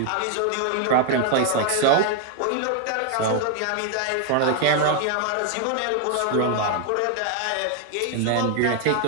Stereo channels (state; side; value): different; both; correlation 0.00